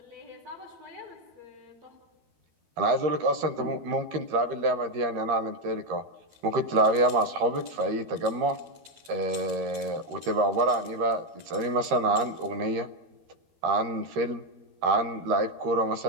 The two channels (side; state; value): left; late; 13 ms